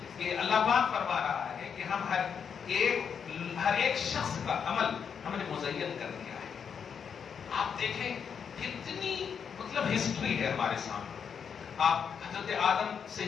کہ اللہ پاک فرما رہا ہے کہ ہم ہر ایک شخص کا عمل ہم نے مزین کر دیا ہے. آپ دیکھیں کتنی مطلب ہسٹری ہے ہمارے سامنے. آپ حضرت آدم سے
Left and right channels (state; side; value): quieter; right; 7.0 dB